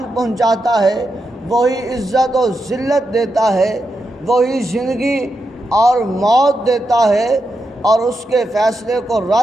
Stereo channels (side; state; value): both; normal; correlation 0.86